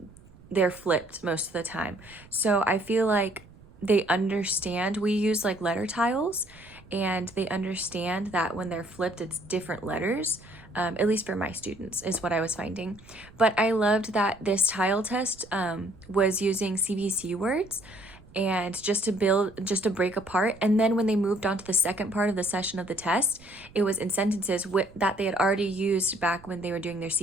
They're flipped most of the time. So I feel like they understand. We use like letter tiles, and they understand that when they're flipped, it's different letters. At least for my students is what I was finding. But I loved that this tile test was using CVC words and just to break apart. And then when they moved on to the second part of the session of the test, it was in sentences that they had already used back when they were doing their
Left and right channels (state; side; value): noise; right; rumble, 23 dB below the sound